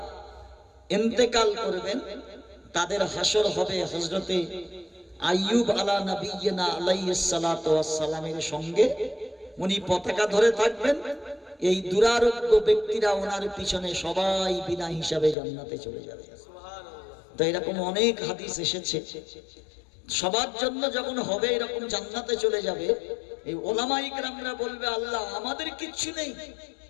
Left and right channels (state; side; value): drops out; right; at 15.4 s